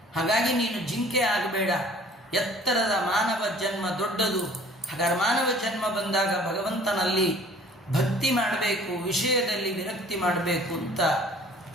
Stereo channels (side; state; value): both; normal; correlation 0.51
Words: ಹಾಗಾಗಿ ನೀನು ಜಿಂಕೆ ಆಗಬೇಡ. ಎತ್ತರದ ಮಾನವ ಜನ್ಮ ದೊಡ್ಡದು. ಹಾಗಾದ್ರೆ ಮಾನವ ಜನ್ಮ ಬಂದಾಗ ಭಗವಂತನಲ್ಲಿ ಭಕ್ತಿ ಮಾಡಬೇಕು, ವಿಷಯದಲ್ಲಿ ವಿರಕ್ತಿ ಮಾಡಬೇಕು ಅಂತ